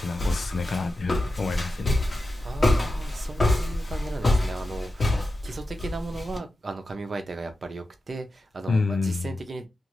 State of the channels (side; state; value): both; normal; correlation 0.92